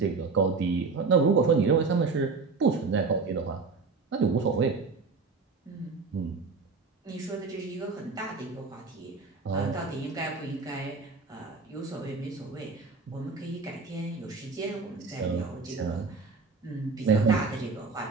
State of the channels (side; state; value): left; quieter; 4.5 dB